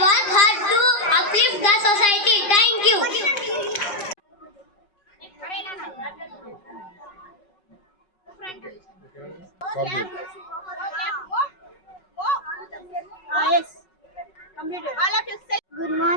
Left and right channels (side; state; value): right; late; 4.9 ms